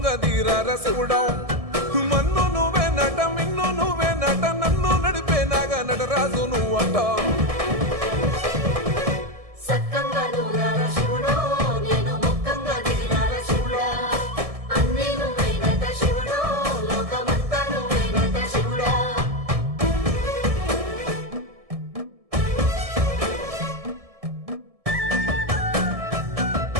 దీరార శివుడో మన్ను నువ్వే నట మిన్ను నువ్వే నట నన్ను నడిపే నాగా నటరాజు నువ్వంట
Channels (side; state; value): left; late; 1.7 ms